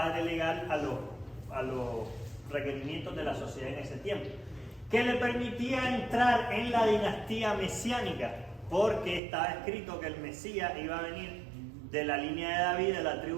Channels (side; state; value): left; drops out; at 9.2 s